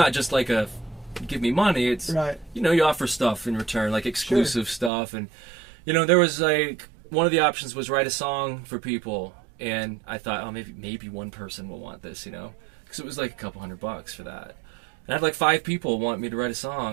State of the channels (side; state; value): left; drops out; at 4.9 s